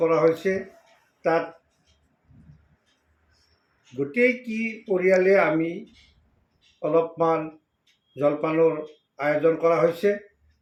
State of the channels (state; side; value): identical; both; correlation 1.00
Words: কৰা হৈছে। তাত গোটেই পৰিয়ালে আমি অলপমান জলপানৰ আয়োজন কৰা হৈছে।